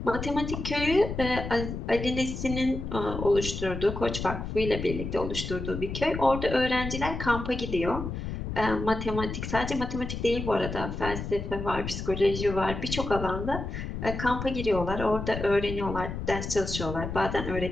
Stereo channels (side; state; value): left; noise; rumble, 6 dB below the sound